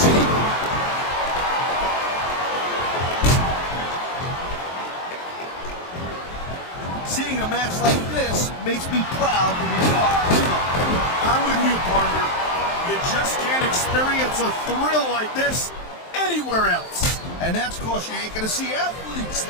Seeing a match like this makes me proud to be part of it. I'm with you, partner. You just can't experience a thrill like this anywhere else. And that's because you ain't gonna see athletes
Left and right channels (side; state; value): right; late; 23 ms